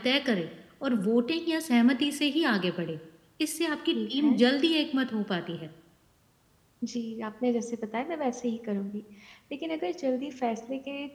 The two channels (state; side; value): identical; both; correlation 1.00